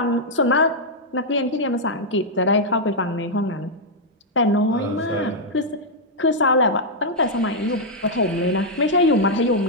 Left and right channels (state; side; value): normal; both; correlation -0.04